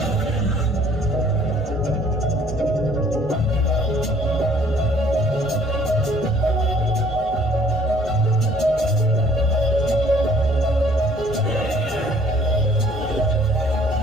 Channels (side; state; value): both; normal; correlation 0.58